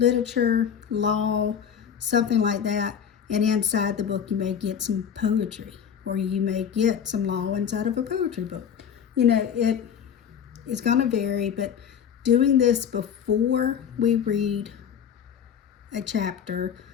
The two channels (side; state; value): right; quieter; 8.0 dB